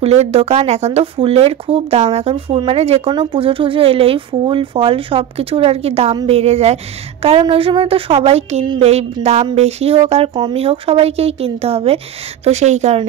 দোকান, এখন তো ফুলের খুব দাম, এখন ফুল মানে যে কোনো পুজো টুজো এলেই ফুল ফল সব কিছুর আর কি দাম বেড়ে যায়, কারণ ওই সময় তো সবাই কিনবেই, দাম বেশি হোক আর কমই হোক সবাইকেই কিনতে হবে, তো সেই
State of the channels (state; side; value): quieter; left; 10.7 dB